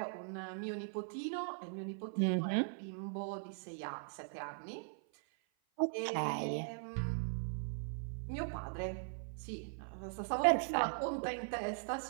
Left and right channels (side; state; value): left; silent; 51 dB below the other